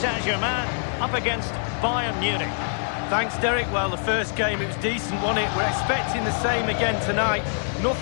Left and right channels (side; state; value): right; silent; digital silence